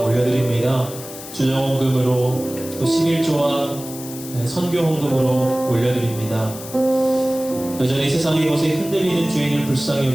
올려드립니다. 주정헌금으로 또 11조와 선교헌금으로 올려드립니다. 여전히 세상의 것에 흔들리는 주인을 불쌍히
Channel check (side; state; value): left; noise; hiss, 13 dB below the sound